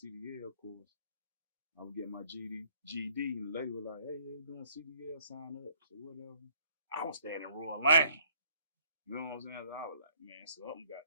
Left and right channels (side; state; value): both; inverted; correlation -0.62